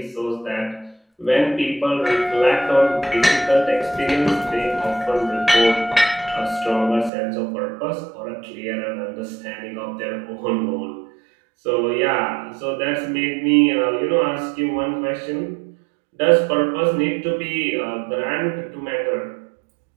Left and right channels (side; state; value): left; drops out; at 7.1 s